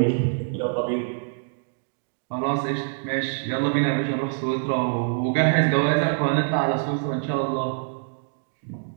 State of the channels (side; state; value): left; silent; digital silence